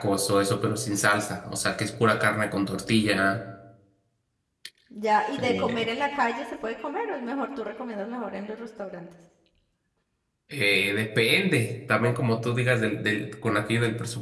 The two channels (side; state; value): both; identical; correlation 1.00